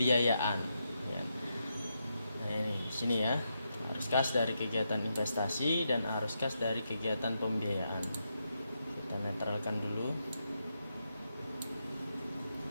ya. Nah, ini sini ya, arus kas dari kegiatan investasi dan arus kas dari kegiatan pembiayaan. Kita netralkan dulu.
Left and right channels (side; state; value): both; inverted; correlation -0.83